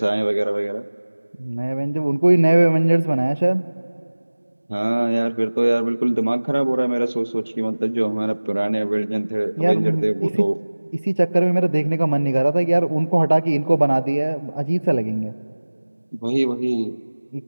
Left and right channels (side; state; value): both; inverted; correlation -1.00